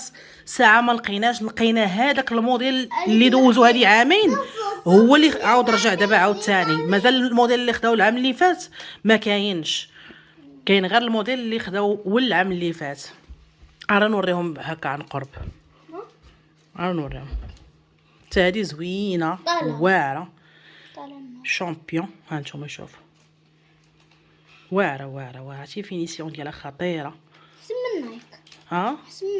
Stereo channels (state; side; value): identical; both; correlation 1.00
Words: ساعه ما لقيناش. لقينا هذاك الموديل اللي دوزو هذه عامين، هو اللي عاود رجع دابا عاود ثاني. مازال الموديل اللي خداو العام اللي فات ما كاينش، كاين غير الموديل اللي خداو والعام اللي فات. راه نوريهم هكا عن قرب، راه نوريهم. حتى هذه زوينه واعره شامبيون. ها نتوما شوفوا واعره شي فينيسيون ديالها خطيره. سم نايك